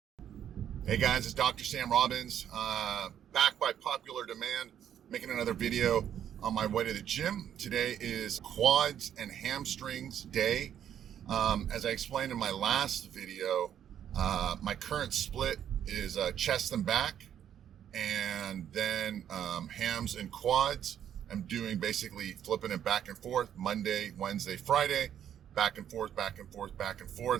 Hey guys, it's Dr. Sam Robbins, back by popular demand, making another video on my way to the gym. Today is quads and hamstrings day. As I explained in my last video, my current split is chest and back, and then hams and quads. I'm doing basically flipping it back and forth, Monday, Wednesday, Friday, back and forth, back and forth, back and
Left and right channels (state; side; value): quieter; left; 9.7 dB